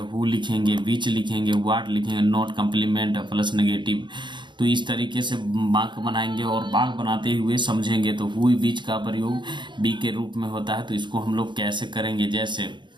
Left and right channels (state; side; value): late; left; 0.23 ms